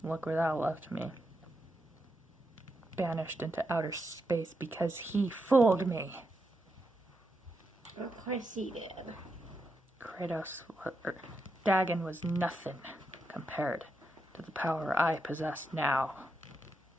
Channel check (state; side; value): normal; both; correlation 0.84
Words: Look where that left me. Banished into outer space because he fooled me. Of course he did. Dagon was nothing compared to the power I possess now.